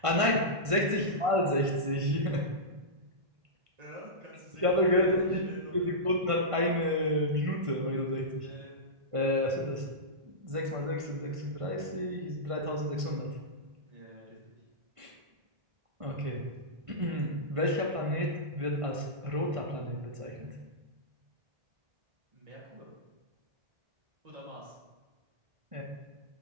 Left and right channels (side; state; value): left; late; 1.5 ms